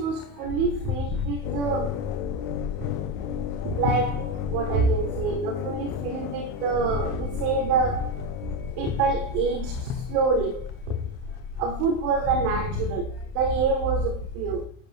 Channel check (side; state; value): left; late; 31 ms